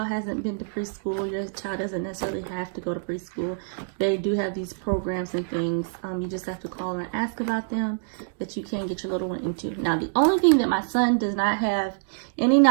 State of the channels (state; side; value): silent; left; digital silence